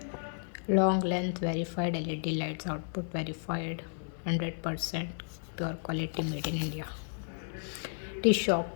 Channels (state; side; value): silent; right; digital silence